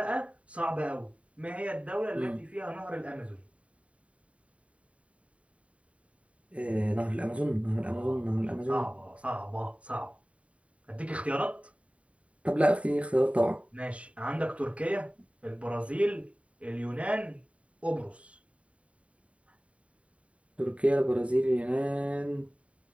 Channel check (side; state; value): left; late; 0.065 ms